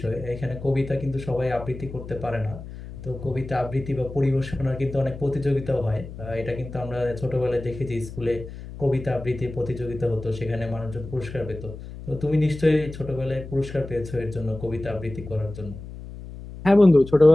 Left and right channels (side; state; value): left; noise; hum, 12 dB below the sound